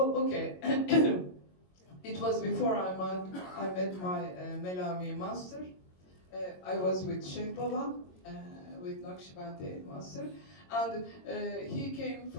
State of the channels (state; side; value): late; right; 22 ms